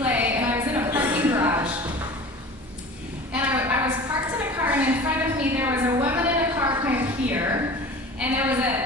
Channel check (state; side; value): normal; both; correlation 0.39